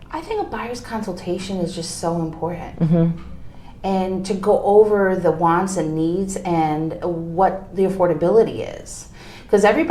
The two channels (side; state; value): both; identical; correlation 1.00